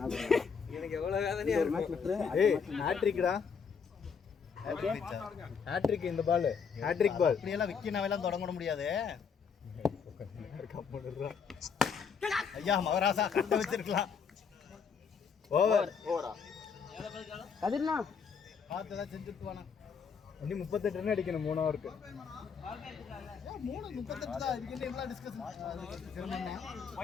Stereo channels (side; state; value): right; quieter; 6.2 dB